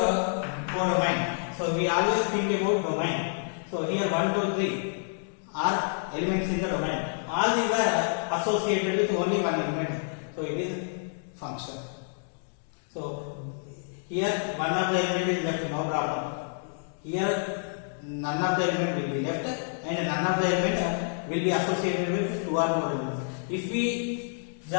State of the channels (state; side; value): silent; right; digital silence